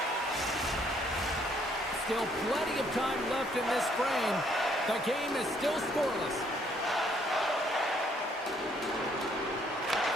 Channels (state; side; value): normal; both; correlation 0.67